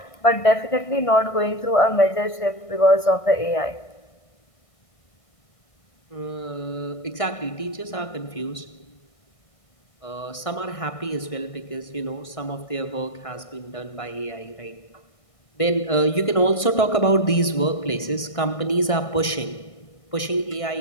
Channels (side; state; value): right; late; 1.6 ms